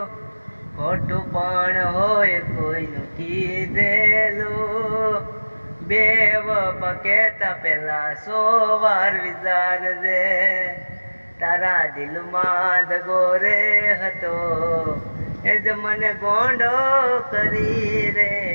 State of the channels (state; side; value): inverted; both; correlation -1.00